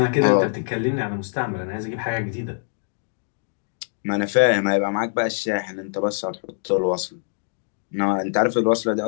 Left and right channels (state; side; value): silent; right; digital silence